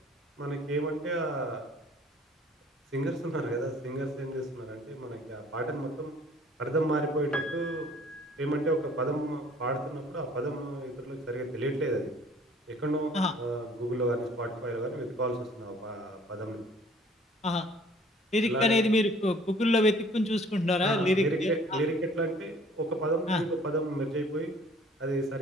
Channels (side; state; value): both; normal; correlation 0.55